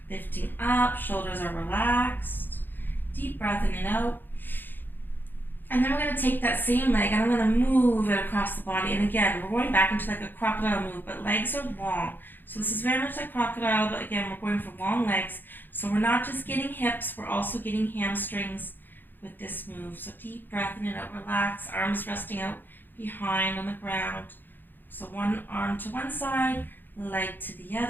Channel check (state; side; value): late; right; 0.092 ms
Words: lifting up. Shoulders are relaxed. Deep breath in and out. And then we're going to take that same leg and I'm going to move it across the body. And again, we're going back into like a crocodile move, but legs are long. So this is very much like crocodile, but again, we're going for long legs. So we're not just getting hips, we're also getting hamstrings with this move. So deep breath in and out, relax, arms resting out behind on the ground. So one arm to one side, leg to the